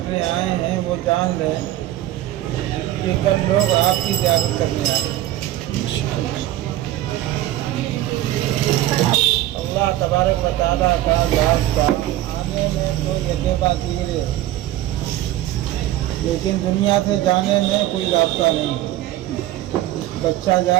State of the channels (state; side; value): quieter; left; 14.4 dB